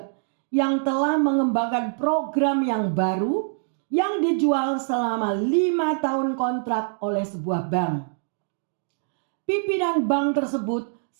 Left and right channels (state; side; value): silent; left; digital silence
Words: yang telah mengembangkan program yang baru yang dijual selama 5 tahun kontrak oleh sebuah bank. Pimpinan bank tersebut